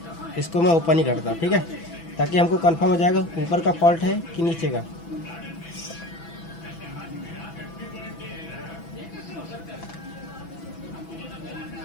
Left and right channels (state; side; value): late; right; 6.0 ms